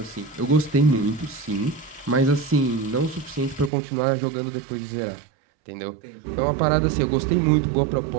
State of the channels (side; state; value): left; drops out; at 3.7 s